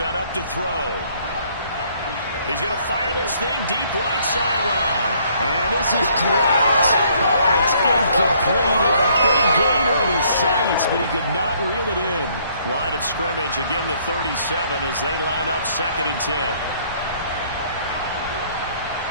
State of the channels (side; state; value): both; inverted; correlation -0.64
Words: up to throw. He's going to fire this thing deep right sideline. And this is dropped. Oh, it's incomplete. He had a big gainer in his sights, but he could not reel it in. Line of scrimmage, again the 37 as they line up 2nd and 10.